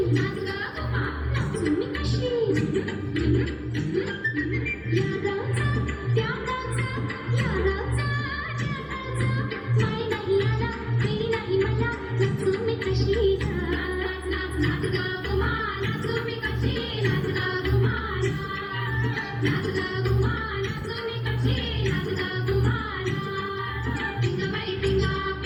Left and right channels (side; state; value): both; identical; correlation 1.00